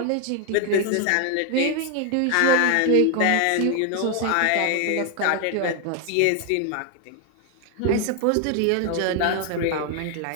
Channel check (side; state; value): both; different; correlation 0.01